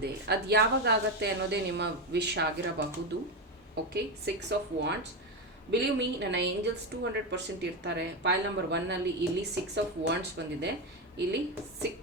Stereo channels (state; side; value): normal; both; correlation 0.13